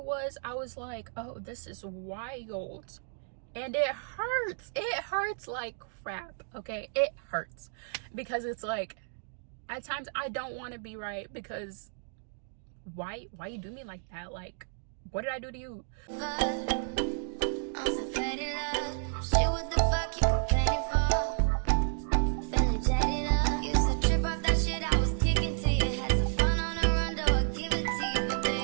like, oh, this is wild. And it hurts. It hurts like crap, okay? It hurts. Because it's like, at times I don't want to be right, because why you do me like that? Like, what did I do to you?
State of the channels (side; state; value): left; silent; digital silence